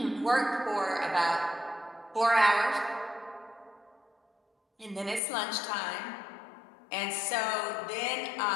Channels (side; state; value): right; drops out; at 5.2 s